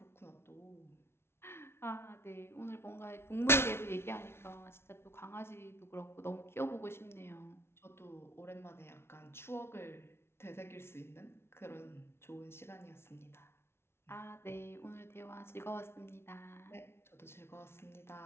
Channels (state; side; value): late; right; 0.12 ms